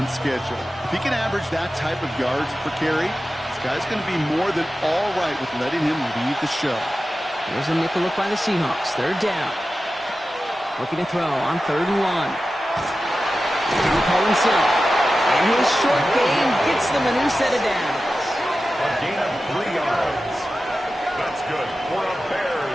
schedule. If he can average that type of yards per carry, this guy's going to be more than all right with letting him lead the show. There's a nickel look by the Seahawks. 3rd down. Looking to throw on 3rd and 1. He call himself. And his short game gets them a new set of downs. A gain of 3 yards. That's good for a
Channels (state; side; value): normal; both; correlation 0.94